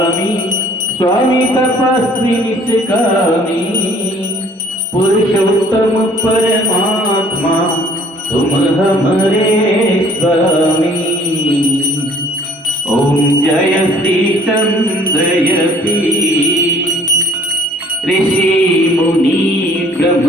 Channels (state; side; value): normal; both; correlation 0.56